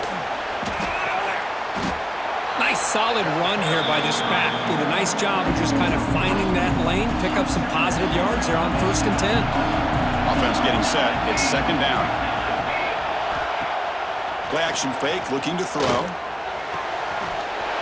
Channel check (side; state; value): both; identical; correlation 1.00